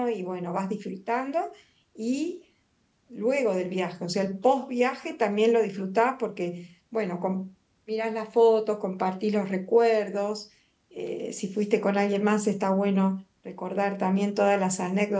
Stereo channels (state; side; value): identical; both; correlation 1.00